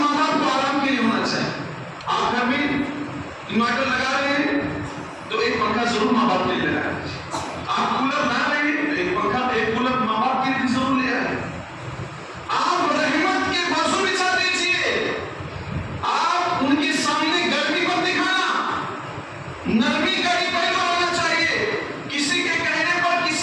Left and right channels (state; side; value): identical; both; correlation 1.00